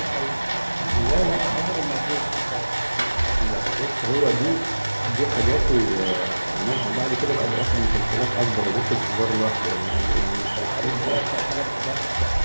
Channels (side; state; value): both; inverted; correlation -1.00